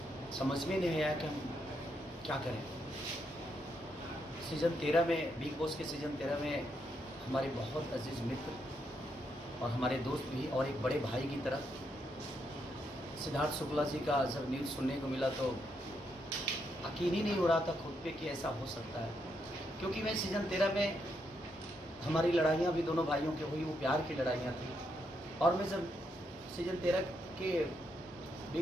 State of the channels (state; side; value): normal; both; correlation 0.79